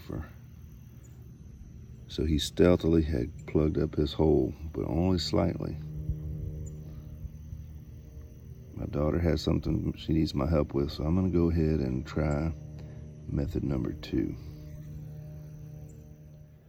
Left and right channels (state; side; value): identical; both; correlation 1.00